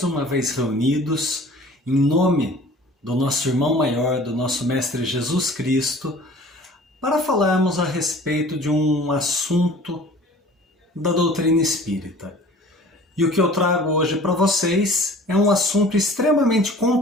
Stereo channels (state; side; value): normal; both; correlation 0.46